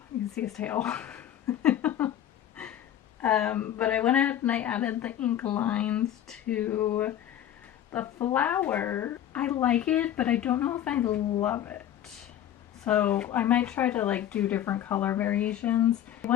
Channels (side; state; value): right; quieter; 11.1 dB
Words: You can see his tail. But I went ahead and I added the ink lines to the flower. I like it, but I don't know if I love it. So I might try to like do different color variations. I